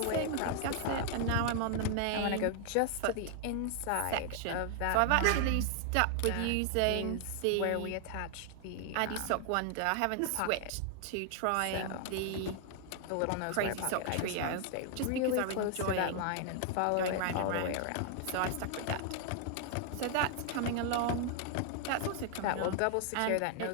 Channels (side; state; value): both; different; correlation 0.00